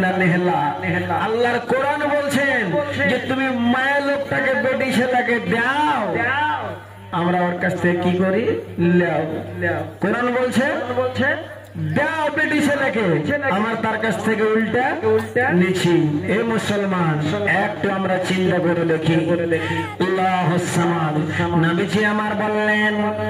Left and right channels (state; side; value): identical; both; correlation 1.00